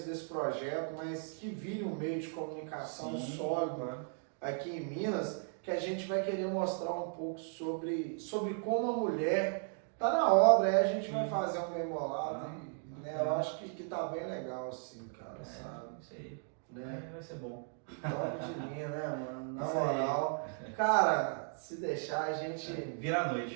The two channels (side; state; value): left; silent; 54 dB below the other